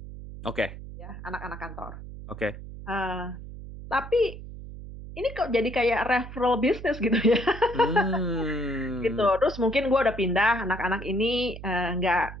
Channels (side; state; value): right; noise; hum, 12 dB below the sound